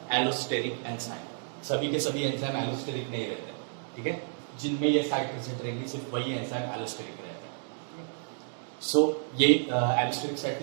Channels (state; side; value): silent; left; digital silence